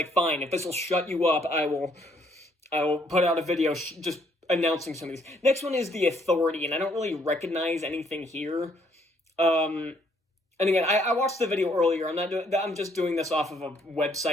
fine, if this will shut you up, I will I will put out a video just announcing some of these. Next one is The Authority, and I don't really recognize anything here. And again, I watched the video earlier. I'm just doing this off of a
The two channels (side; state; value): both; normal; correlation 0.67